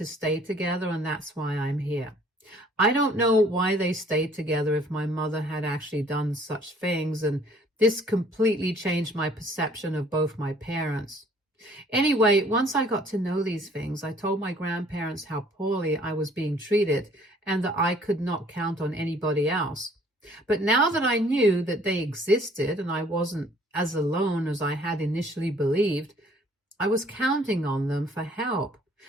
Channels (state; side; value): normal; both; correlation 0.58